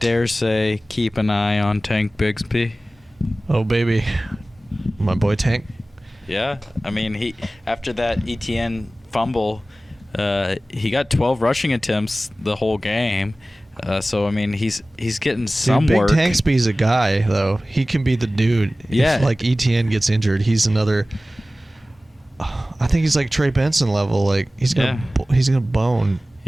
say keep an eye on Tank Bigsby? Oh baby, my boy Tank. Yeah, I mean he after that ETN fumble, he got 12 rushing attempts the whole game. So I mean he's getting some Big work. Tanksby's a guy though. He can be the dude. Yeah. If, like, ETN gets injured, he's another. I think he's like Trey Benson level. Like he's gonna bone.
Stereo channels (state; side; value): normal; both; correlation 0.97